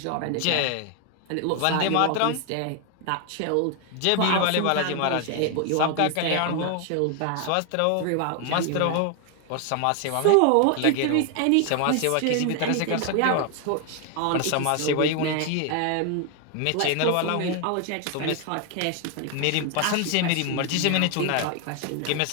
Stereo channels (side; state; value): both; different; correlation 0.01